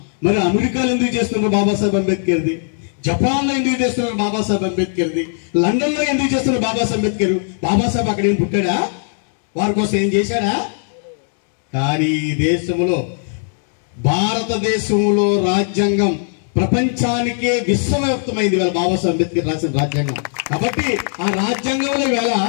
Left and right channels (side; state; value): right; silent; 63 dB below the other